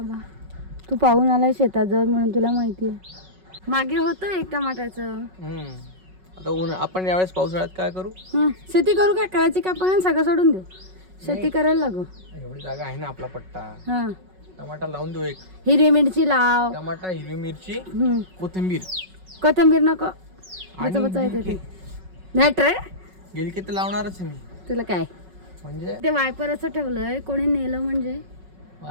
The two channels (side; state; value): left; late; 5.4 ms